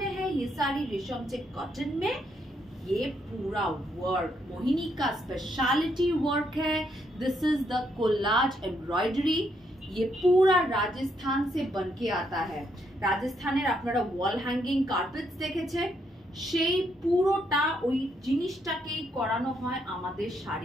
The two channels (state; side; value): normal; both; correlation 0.75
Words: है, ये साड़ी रेशम चेक कॉटन में। ये पूरा वर्क मोहिनी का स्पेशलिटी वर्क है। This is the collage embroidery. ये पूरा राजस्थान से बनके आता है। রাজস্থানের আপনারা ওয়াল হ্যাঙ্গিং কার্পেটস দেখেছেন, সেই পুরোটা ওই জিনিসটাকেই করানো হয় আমাদের